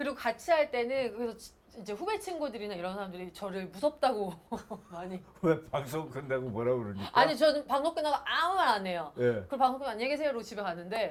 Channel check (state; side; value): identical; both; correlation 1.00